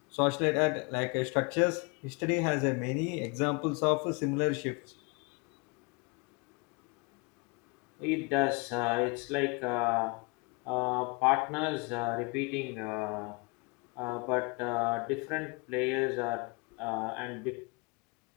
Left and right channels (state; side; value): quieter; right; 29.6 dB